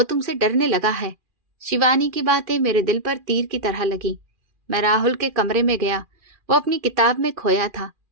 तुमसे डरने लगा है। शिवानी की बातें मेरे दिल पर तीर की तरह लगी। मैं राहुल के कमरे में गया। वो अपनी किताब में खोया था।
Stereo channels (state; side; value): late; left; 2.4 ms